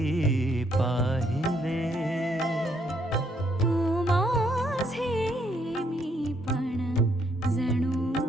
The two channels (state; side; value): normal; both; correlation 0.72